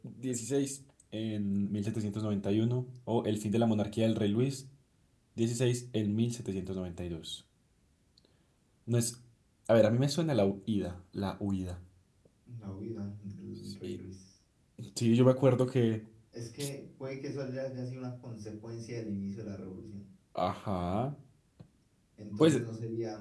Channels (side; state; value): both; identical; correlation 1.00